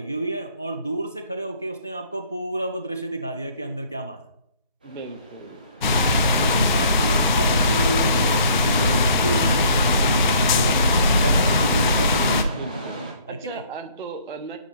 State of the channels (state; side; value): inverted; both; correlation -0.57